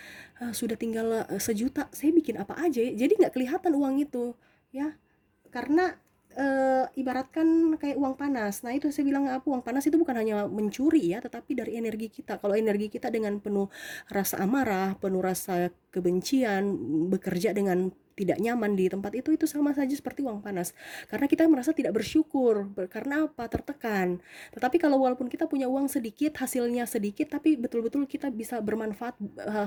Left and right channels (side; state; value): both; identical; correlation 1.00